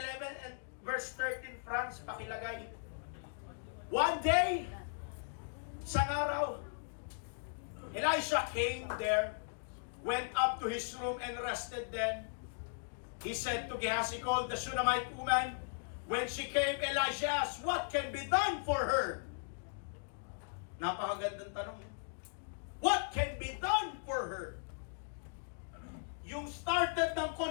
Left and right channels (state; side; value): silent; right; digital silence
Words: and verse 13, Franz, pakilagay. One day, isang araw, Elisha came there, went up to his room and rested then. He said to Gehazi, called the Shunammite woman. When she came, Elisha asked, what can be done for her? Napakagandang tanong. What can be done for her? Yung started ng